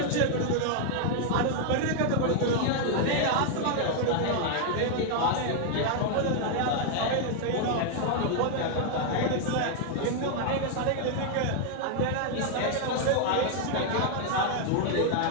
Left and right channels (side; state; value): both; different; correlation 0.00